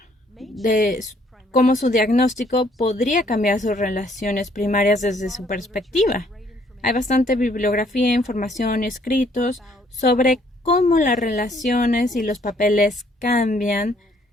de cómo su diagnóstico podría cambiar sus relaciones primarias desde su perspectiva. Hay bastante bibliografía, información y escritos sobre cómo las relaciones y los papeles cambian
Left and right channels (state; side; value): normal; both; correlation 0.65